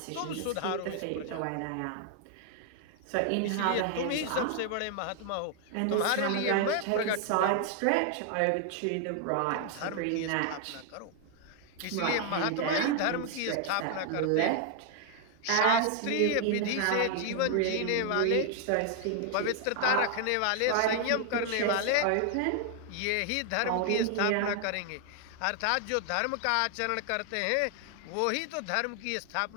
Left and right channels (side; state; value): both; different; correlation 0.00